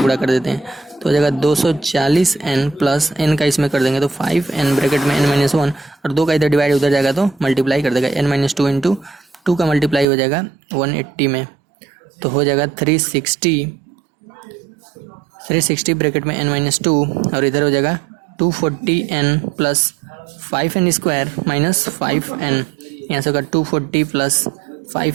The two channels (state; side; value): drops out; left; at 10.1 s